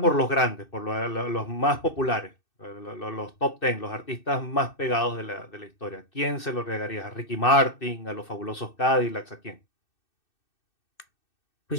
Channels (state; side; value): late; right; 2.6 ms